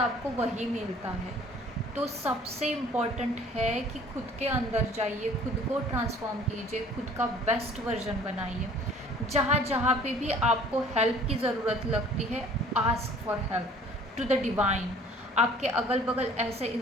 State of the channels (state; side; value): normal; both; correlation 0.53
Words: वही मिलता है। तो सबसे इम्पॉर्टेंट है कि खुद के अंदर जाइए, खुद को ट्रांसफॉर्म कीजिए, खुद का बेस्ट वर्जन बनाइए। जहाँ जहाँ पे भी आपको हेल्प की ज़रूरत लगती है, ask for help to the divine. आपके अगल बगल ऐसे